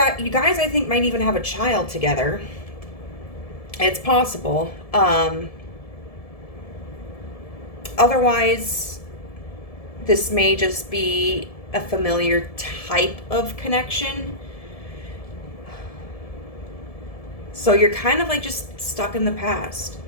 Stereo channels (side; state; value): right; late; 1.7 ms